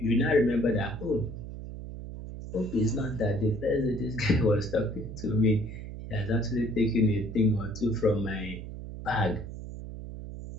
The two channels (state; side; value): noise; right; hum, 10 dB below the sound